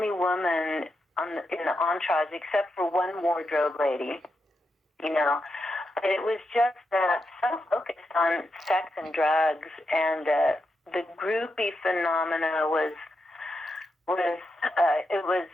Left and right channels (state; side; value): normal; both; correlation 0.85